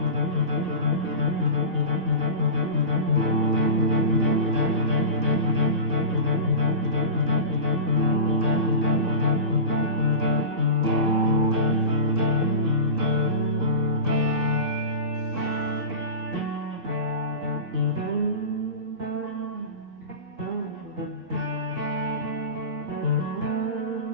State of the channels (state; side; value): late; left; 2.6 ms